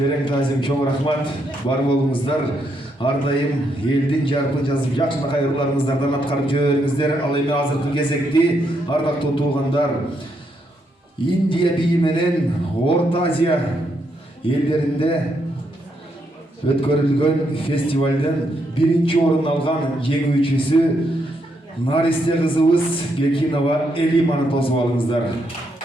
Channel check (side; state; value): both; normal; correlation 0.78